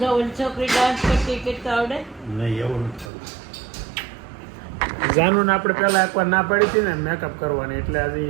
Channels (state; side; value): drops out; left; at 3.1 s